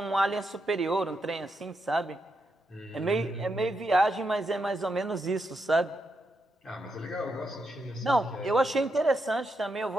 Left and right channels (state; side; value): normal; both; correlation 0.83